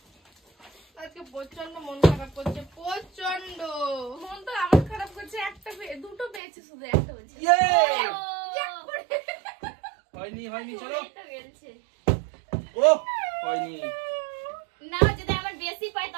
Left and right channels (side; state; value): left; drops out; at 6.4 s